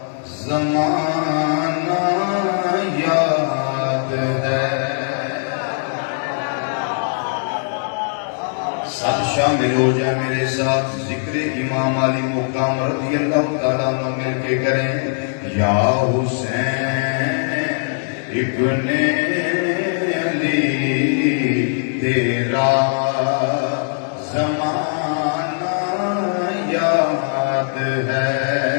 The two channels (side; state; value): right; silent; 66 dB below the other